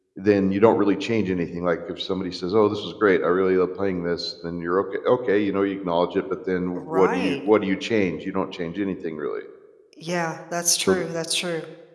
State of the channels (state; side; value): identical; both; correlation 1.00